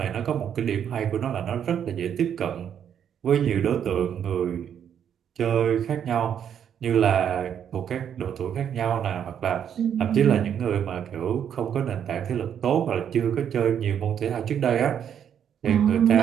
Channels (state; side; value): quieter; left; 8.8 dB